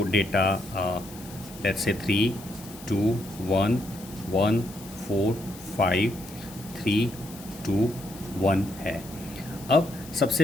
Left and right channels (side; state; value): left; noise; hiss, 17 dB below the sound